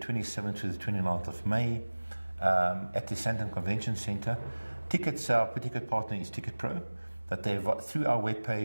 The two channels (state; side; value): inverted; both; correlation -1.00